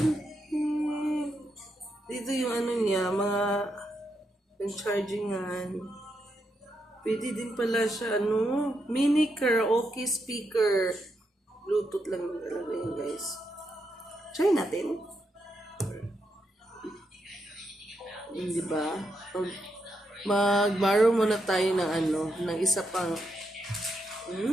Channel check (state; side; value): normal; both; correlation 0.82